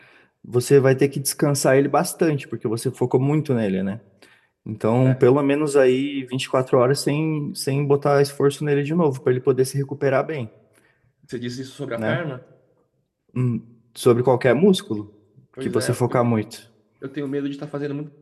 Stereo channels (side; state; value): both; identical; correlation 1.00